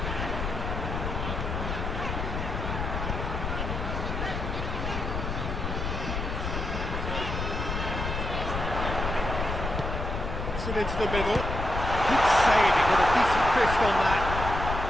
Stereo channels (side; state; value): left; noise; rumble, 3 dB below the sound